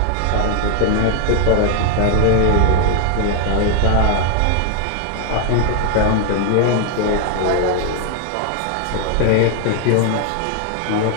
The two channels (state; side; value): different; both; correlation 0.00